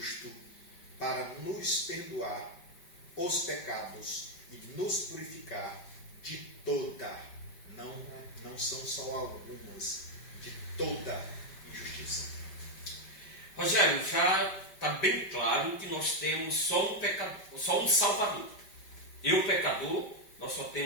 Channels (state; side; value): late; right; 5.1 ms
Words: para nos perdoar os pecados e nos purificar de toda, não são só algumas, de toda injustiça. Rogério, já está bem claro que nós temos só um Salvador. Eu, pecador, nós só